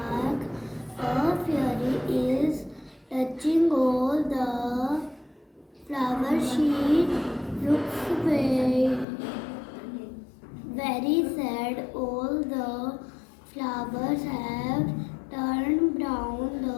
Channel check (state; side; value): drops out; right; at 9.1 s